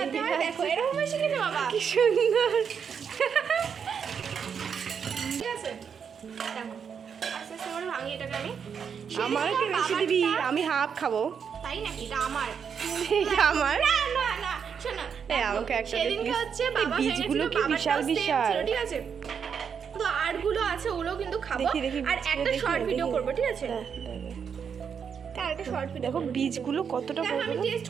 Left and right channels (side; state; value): left; quieter; 7.0 dB